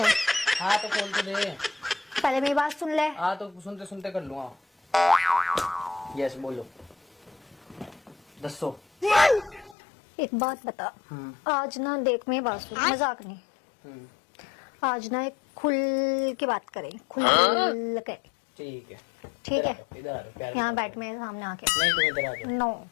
हाँ तो खोल के दे। पहले मेरी बात सुन ले। हाँ तो सुनते सुनते कर लूँगा। यस बोलो, दसो। एक बात बता, आज ना देख मेरी बात सुन, मजाक नहीं। आज ना एक खुल के बात करें, खुल के। ठीक है ठीक है, इधर आ जाओ, प्यार यहाँ से बैठ मेरे सामने आके। नहीं तुम इधर आ जाओ। नो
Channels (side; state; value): right; drops out; at 9.8 s